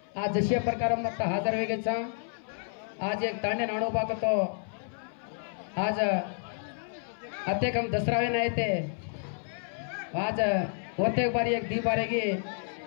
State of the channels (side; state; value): right; silent; 57 dB below the other